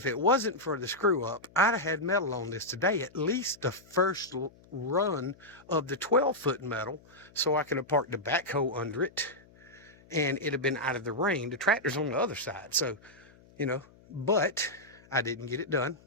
it wasn't for the screw up, I'd have had metal on this today, at least the first run of the 12-foot metal, so I could have parked the backhoe under it and it'd have been out of the rain. The tractor's on the other side, so, but I didn't get it done.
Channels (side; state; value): left; noise; hum, 26 dB below the sound